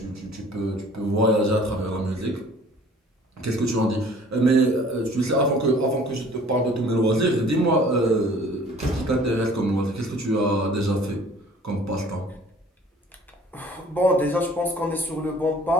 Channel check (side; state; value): both; normal; correlation 0.52